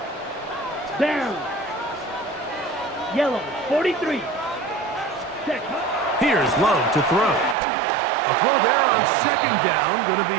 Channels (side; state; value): left; drops out; at 7.6 s